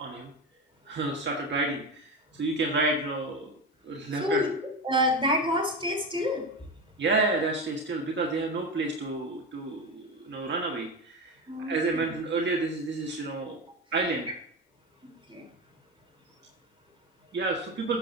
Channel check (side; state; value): both; normal; correlation 0.20